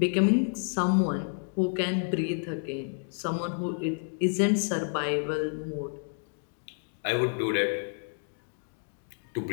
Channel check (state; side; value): silent; right; 58 dB below the other